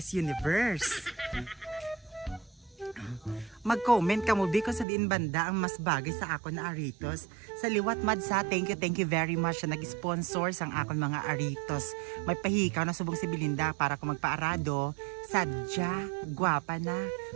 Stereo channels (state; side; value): drops out; left; at 4.9 s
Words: Universe. mag-comment ka mo kung sa diin banda ang mas bagay sa akon na aritos. Sa liwat Madsa, thank you very much na nag-sponsor sang akon mga aritos. May pahikaw na subong si Belinda para kung magpaarado, sadya, gwapa na,